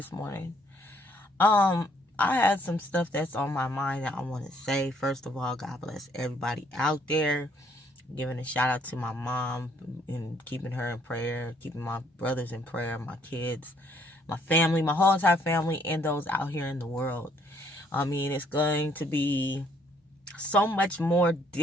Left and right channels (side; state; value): both; normal; correlation 0.66